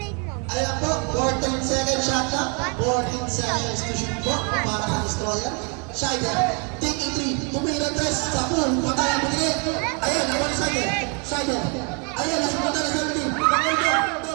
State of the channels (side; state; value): left; quieter; 35.6 dB